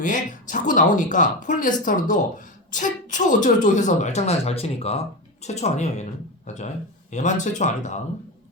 자꾸 나오니까 폴리에스터도 최초 어쩌고저쩌고 해서 말장난을 잘 치니까 최초 아니에요 얘는. 맞죠? 얘만 최초 아니다.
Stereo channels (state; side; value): normal; both; correlation 0.20